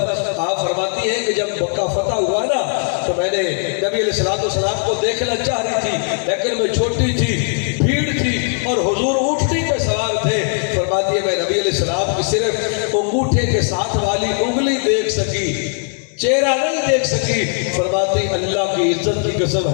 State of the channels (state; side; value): silent; right; 55 dB below the other